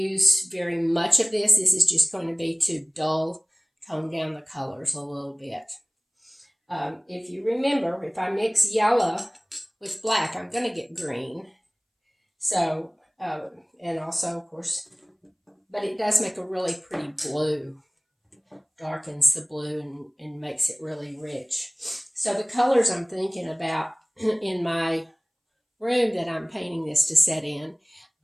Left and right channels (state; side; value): identical; both; correlation 1.00